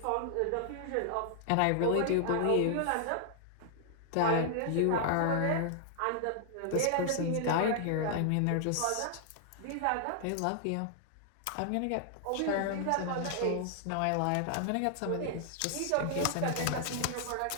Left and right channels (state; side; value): different; both; correlation -0.01